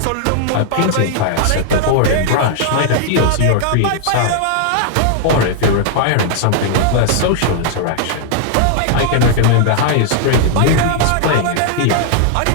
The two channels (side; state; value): both; different; correlation -0.01